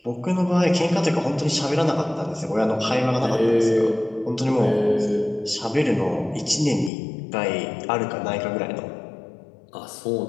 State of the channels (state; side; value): drops out; right; at 6.9 s